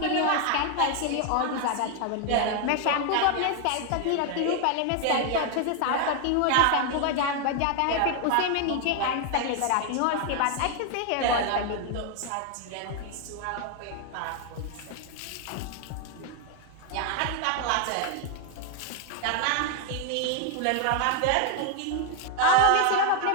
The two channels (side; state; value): both; different; correlation 0.01